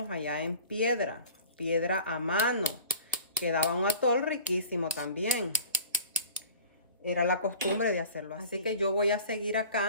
allá en piedra a mano. Quedaba un atol riquísimo también. Era la costumbre de hacerlo así. Así que yo voy a seguir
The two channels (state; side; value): inverted; both; correlation -0.44